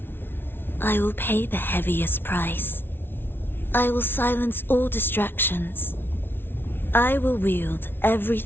I will pay the heaviest price. I will silence all distractions. I will wield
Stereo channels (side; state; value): right; late; 0.11 ms